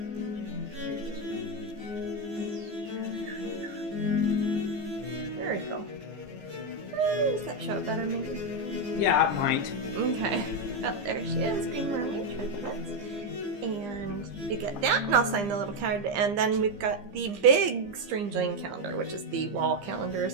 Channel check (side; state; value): left; late; 15 ms